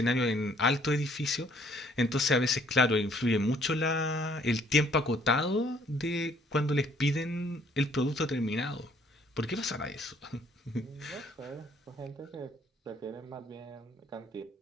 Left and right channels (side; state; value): both; normal; correlation 0.62